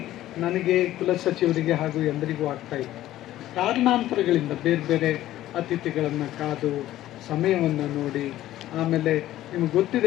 ನನಗೆ, ಕುಲಸಚಿವರಿಗೆ ಹಾಗೂ ಎಲ್ಲರಿಗೂ ಆಗ್ತಾ ಇತ್ತು. ಕಾರಣಾಂತರಗಳಿಂದ ಬೇರೆ ಬೇರೆ ಅತಿಥಿಗಳನ್ನು ಕಾದು ಸಮಯವನ್ನು ನೋಡಿ, ಆಮೇಲೆ ನಿಮ್ಗೆ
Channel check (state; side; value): quieter; right; 14.1 dB